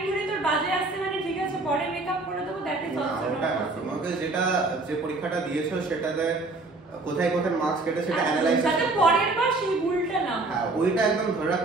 ধরে তোর বাজে আসছে মানে ঠিক আছে পরে মেকআপ করে দেবো, দ্যাট ইজ অলসো নট। তোমাকে যে পরীক্ষাটা দিয়েছো সেটাতে কোথায় কোথায় মার্কস কেটে সেটা অ্যানালাইজ যাতে পরের বার সেই ভুলটা না হয়। হ্যাঁ, ওইটা একদম ধরে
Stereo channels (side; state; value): left; quieter; 3.2 dB